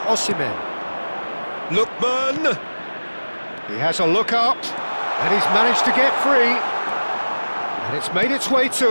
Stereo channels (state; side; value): inverted; both; correlation -1.00